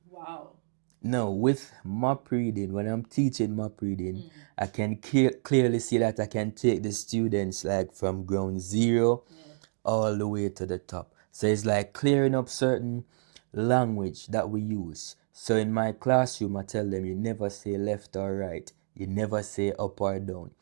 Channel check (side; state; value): left; silent; digital silence